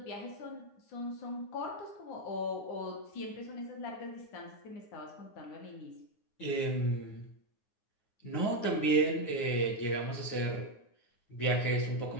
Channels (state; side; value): late; right; 9.6 ms